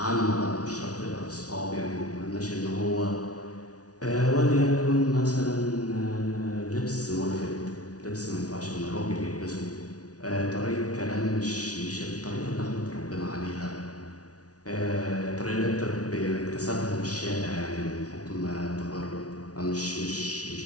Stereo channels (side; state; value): right; late; 0.68 ms